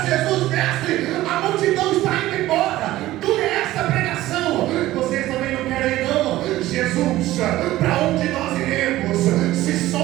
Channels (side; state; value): left; quieter; 15.9 dB